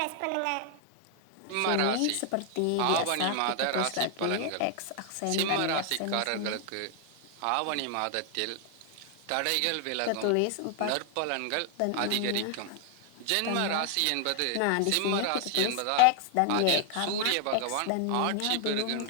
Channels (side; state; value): both; different; correlation 0.00